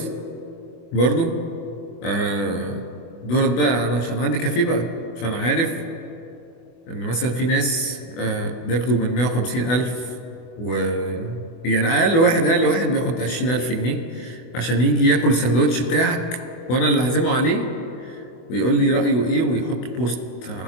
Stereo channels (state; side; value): late; right; 24 ms